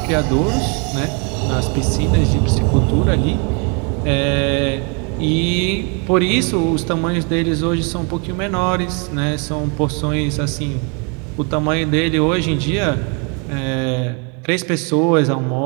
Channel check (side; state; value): left; quieter; 34.8 dB